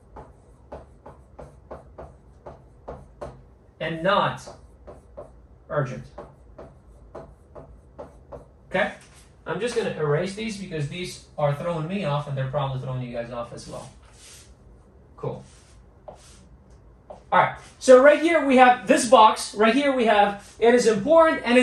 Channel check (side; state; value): both; identical; correlation 1.00